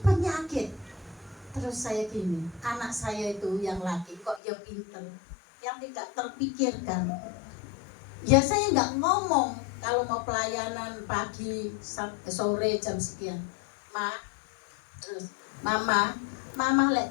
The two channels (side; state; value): right; drops out; at 4.4 s